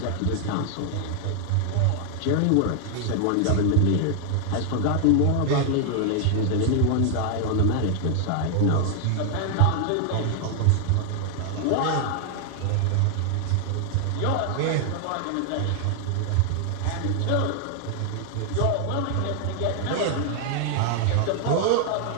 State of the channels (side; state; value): both; different; correlation 0.00